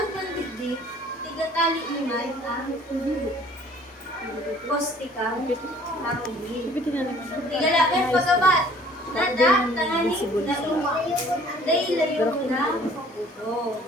ng digdig, tigatali naman ang postikang harugin. Bitin na naman. Tigalakan pagabat. Nada, tangani, nauma. Dahil layo na puto.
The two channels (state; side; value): normal; both; correlation 0.54